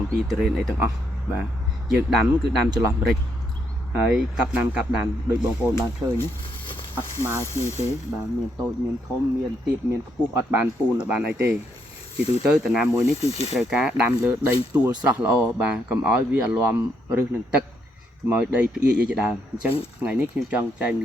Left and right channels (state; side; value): normal; both; correlation 0.75